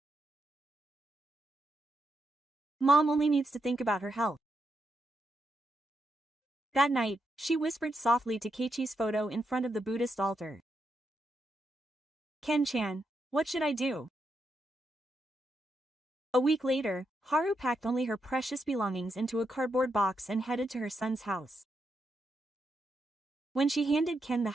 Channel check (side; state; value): both; normal; correlation 0.82